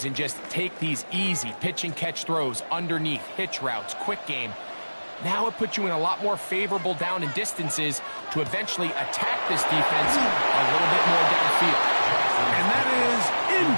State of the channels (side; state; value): both; inverted; correlation -1.00